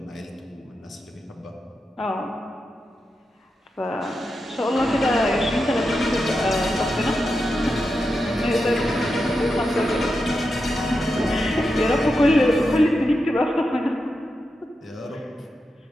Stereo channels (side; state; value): both; normal; correlation 0.88